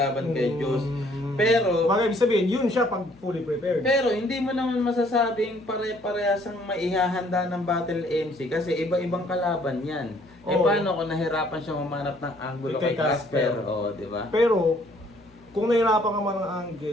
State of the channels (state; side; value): noise; left; hum, 28 dB below the sound